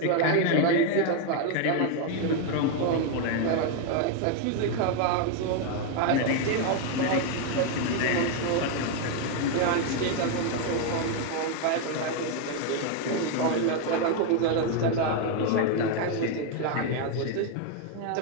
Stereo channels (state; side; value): different; both; correlation 0.01